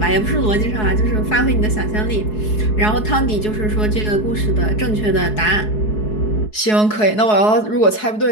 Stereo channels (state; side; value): late; right; 4.7 ms